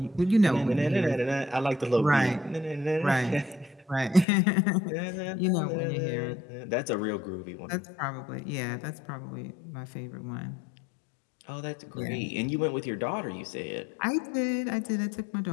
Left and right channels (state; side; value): drops out; right; at 4.2 s